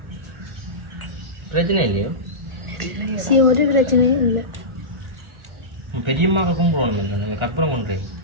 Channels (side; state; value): left; late; 1.4 ms